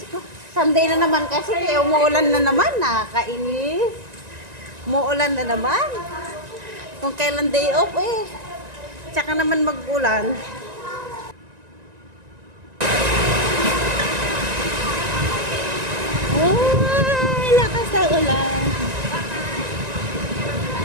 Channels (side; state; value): left; late; 1.9 ms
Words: Sunday na naman kasi, kaya umuulan na naman. Nakakainis. Umuulan na naman. Kung kailan day off eh. Tsaka naman mag-ulan. Ay, lakas ng ulan.